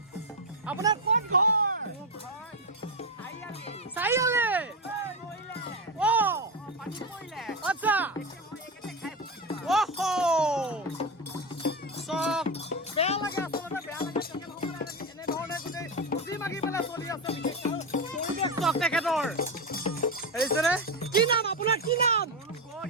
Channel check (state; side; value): normal; both; correlation 0.12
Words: আপোনাৰ কোন ঘৰ চাৰিআলি আচ্ছা চব বেয়া লাগে আচলতে বেয়া লাগে তেখেতসকলে এনেধৰণে গোটেই খুজি মাগি পেলাই চলি আছে পৰিৱেশ চক তেখেতৰ হেৰিছেনে কি নাম আপোনাৰ কি নাম